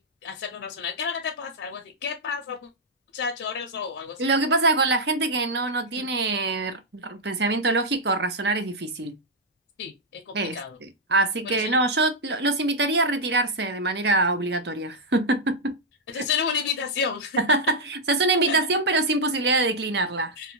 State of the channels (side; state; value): both; normal; correlation -0.03